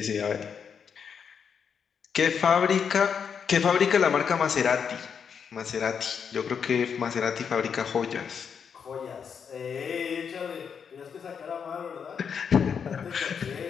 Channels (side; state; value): right; quieter; 6.9 dB